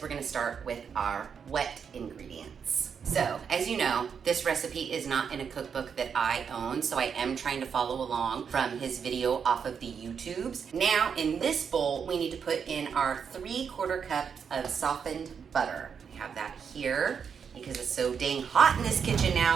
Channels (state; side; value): quieter; left; 6.8 dB